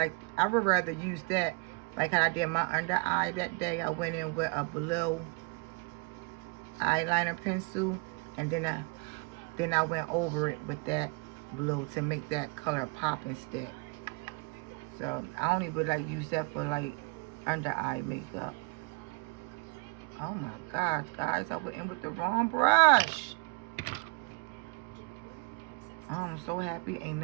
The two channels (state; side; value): quieter; left; 28.2 dB